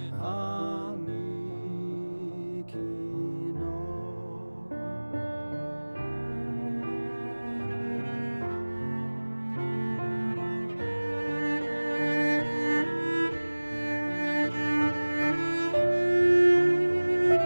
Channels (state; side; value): inverted; both; correlation -1.00